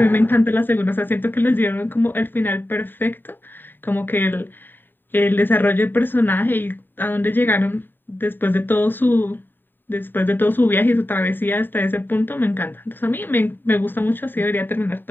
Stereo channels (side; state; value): right; late; 0.093 ms